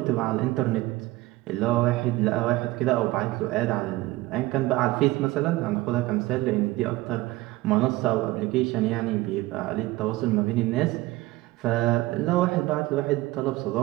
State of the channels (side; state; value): left; quieter; 18.7 dB